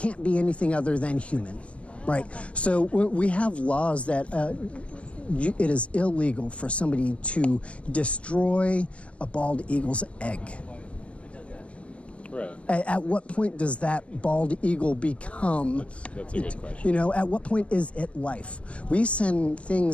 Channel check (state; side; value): late; right; 0.062 ms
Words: be anything other than human, right? So we have laws that it is illegal for somebody to destroy a bald eagle's egg. Right. At what point does that bald eagle become? That's a good question. You know, at what point is it life? We send